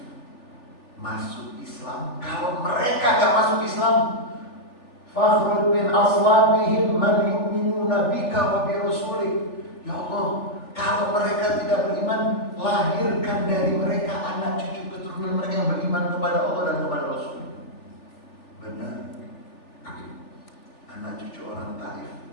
masuk Islam. Kalau mereka gak masuk Islam, fakhruj min aslabihim man yu'minuna bika wa bi rasulik. Ya Allah, kalau mereka tidak beriman, lahirkan dari mereka anak cucu keturunan mereka yang beriman kepada Allah dan kepada Rasul. Benar. Anak cucu orang Taif,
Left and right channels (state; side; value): late; right; 3.4 ms